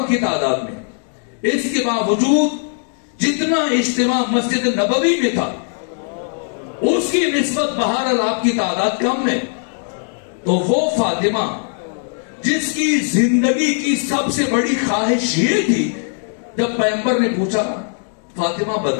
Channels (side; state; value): right; silent; digital silence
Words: کی تعداد میں. اس کے باوجود جتنا اجتماع مسجد نبوی میں تھا اس کی نسبت بہرحال آپ کی تعداد کم ہے. تو وہ فاطمہ جس کی زندگی کی سب سے بڑی خواہش یہ تھی، جب پیغمبر نے پوچھا فاطمہ